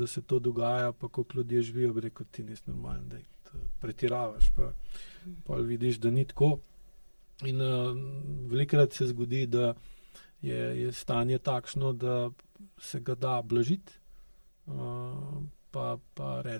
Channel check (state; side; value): inverted; both; correlation -1.00